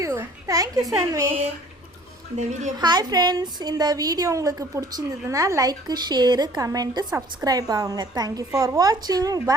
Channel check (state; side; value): normal; both; correlation 0.52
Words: சான்வி. இந்த வீடியோ ஹாய் ஃப்ரெண்ட்ஸ், இந்த வீடியோ உங்களுக்கு பிடிச்சிருந்ததுன்னா லைக், ஷேரு, கமெண்ட்டு, சப்ஸ்கிரைப் ஆகுங்க. தேங்க்யூ ஃபார் வாட்சிங்.